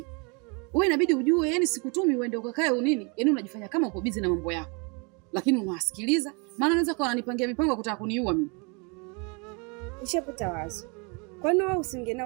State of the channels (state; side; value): quieter; left; 32.5 dB